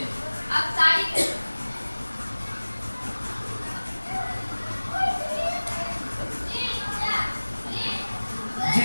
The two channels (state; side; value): inverted; both; correlation -1.00